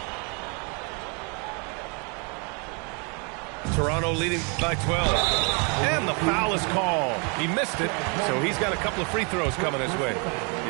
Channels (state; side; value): quieter; left; 34.5 dB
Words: Toronto leading by 12. And the foul is called. He missed it, so he's got a couple of free throws coming his way.